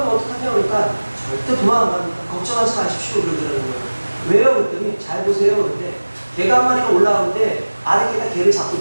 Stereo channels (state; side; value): inverted; both; correlation -1.00